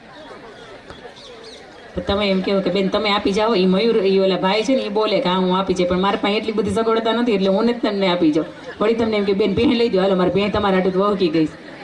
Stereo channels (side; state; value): both; identical; correlation 1.00